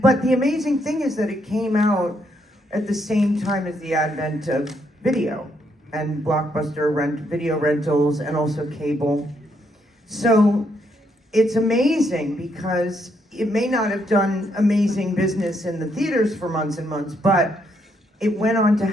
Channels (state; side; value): normal; both; correlation 0.75